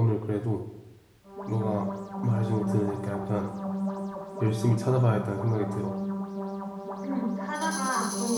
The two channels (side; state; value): both; identical; correlation 1.00